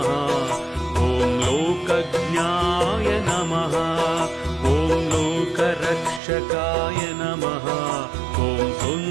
ॐ लोकज्ञाय नमः। ॐ लोकरक्षकाय नमः। ॐ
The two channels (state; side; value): drops out; left; at 6.2 s